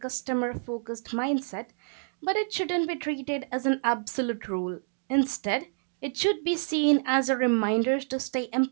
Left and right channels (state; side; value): silent; left; digital silence